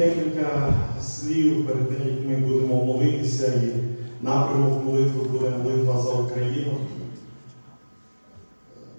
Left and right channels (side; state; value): both; inverted; correlation -1.00